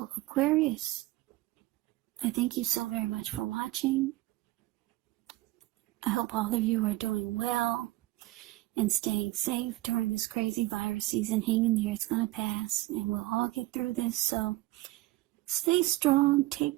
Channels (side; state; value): left; quieter; 18.5 dB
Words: Aquarius, I thank you so very much for watching. I hope all of you are doing well and staying safe during this crazy virus season. Hang in there, it's going to pass, and we'll all get through this. So stay strong,